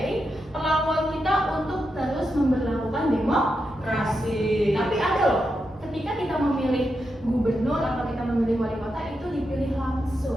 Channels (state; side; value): normal; both; correlation 0.86